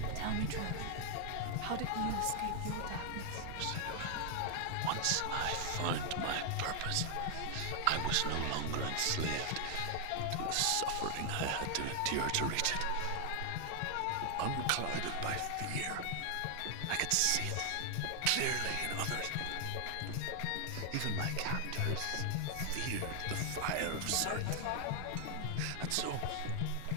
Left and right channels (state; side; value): different; both; correlation 0.00